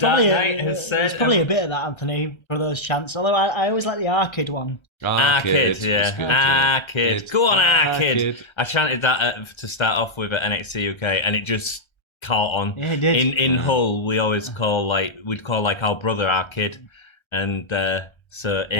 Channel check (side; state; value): right; late; 1.3 ms